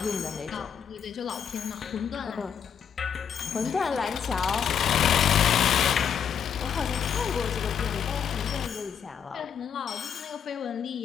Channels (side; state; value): right; quieter; 7.8 dB